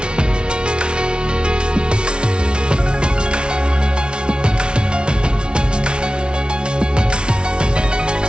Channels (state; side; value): late; left; 0.056 ms